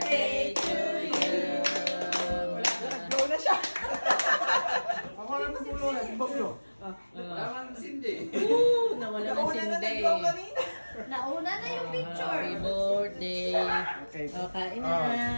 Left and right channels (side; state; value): both; inverted; correlation -1.00